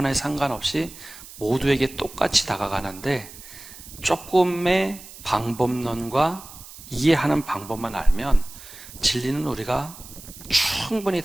상관없이 모두에게 똑같이 다가가는데 조금의 방법론과 이해하는 방법만 알면 진리는 우리가 충분히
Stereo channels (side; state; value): right; noise; hiss, 17 dB below the sound